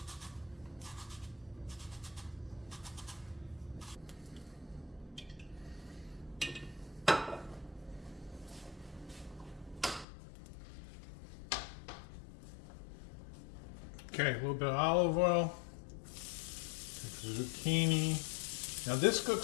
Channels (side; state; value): right; drops out; at 10.1 s